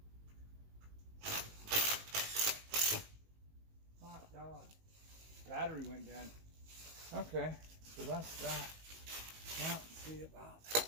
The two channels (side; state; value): left; late; 19 ms